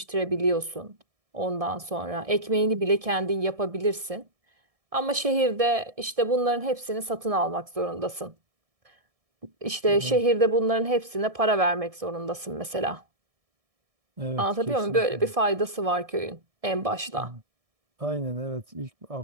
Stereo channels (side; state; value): left; late; 1.6 ms